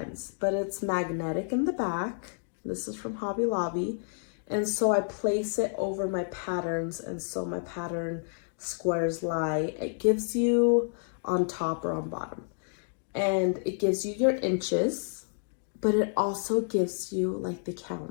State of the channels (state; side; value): silent; right; digital silence